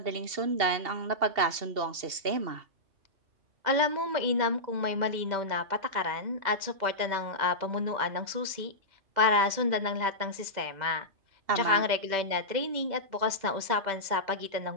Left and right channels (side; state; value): left; late; 2.1 ms